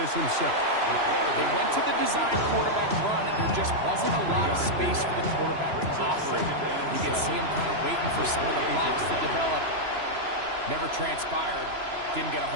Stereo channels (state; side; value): late; left; 3.0 ms